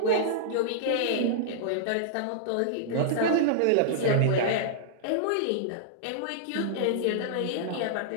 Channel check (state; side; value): different; both; correlation -0.02